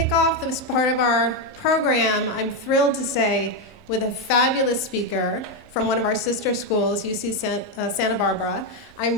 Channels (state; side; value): normal; both; correlation 0.06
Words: off this part of our program, I'm thrilled to say, with a fabulous speaker from one of our sister schools, UC Santa Barbara.